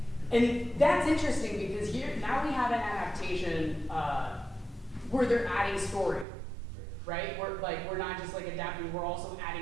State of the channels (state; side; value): drops out; left; at 6.2 s